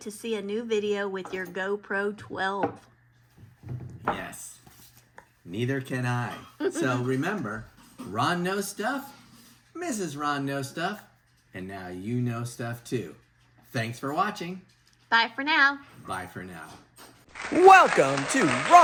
to see a new video with your GoPro 12. Yes. Neither can I. So remember, Ron knows stuff, Mrs. Ron knows stuff, and now you know stuff too. Thanks for watching. Bye for now. Bye for now. Welcome to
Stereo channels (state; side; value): identical; both; correlation 1.00